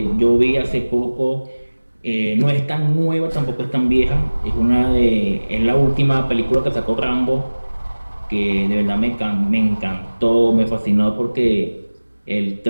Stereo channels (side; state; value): both; inverted; correlation -1.00